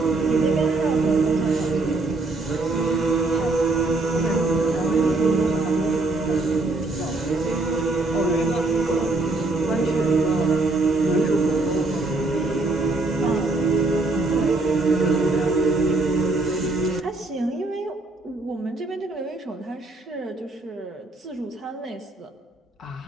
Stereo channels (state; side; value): quieter; left; 3.2 dB